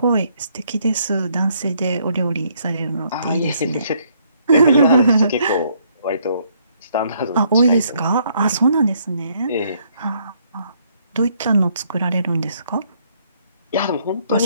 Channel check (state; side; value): inverted; both; correlation -0.68